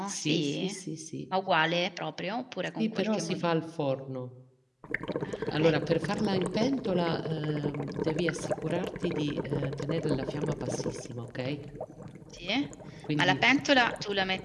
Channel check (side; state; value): both; identical; correlation 1.00